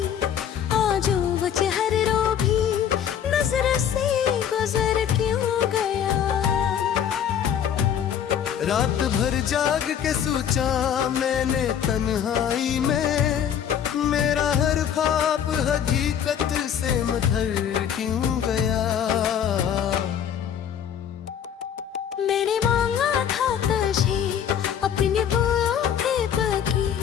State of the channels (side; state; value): right; quieter; 9.0 dB